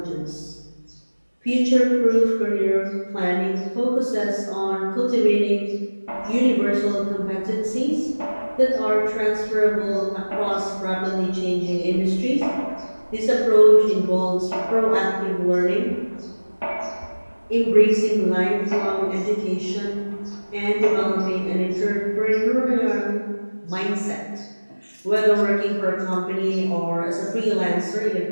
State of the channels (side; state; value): both; inverted; correlation -1.00